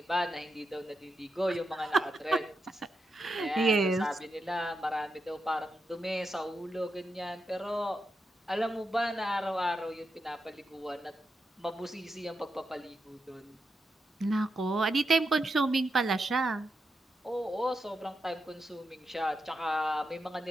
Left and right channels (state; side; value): normal; both; correlation 0.86